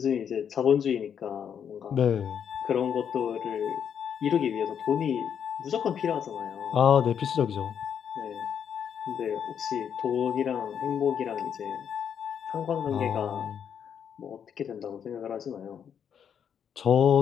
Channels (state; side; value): quieter; right; 8.1 dB